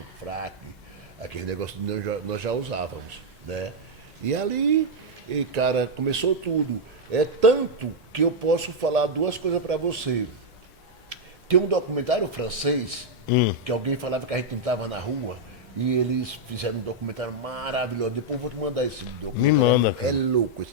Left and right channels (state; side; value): normal; both; correlation -0.02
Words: fraque, aquele negócio nós já usávamos, né? E ali, cara, começou tudo. É tanto que eu posso falar duas coisas para você. Tem um documentário francês, que alguém falava que a gente não estava na rua, e eles fizeram um documentário maravilhoso. Depois eu vou te mandar esse documentário. Me manda. É louco